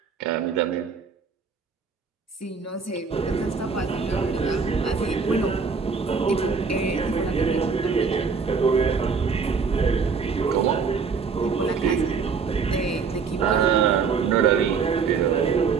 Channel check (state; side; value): quieter; left; 5.5 dB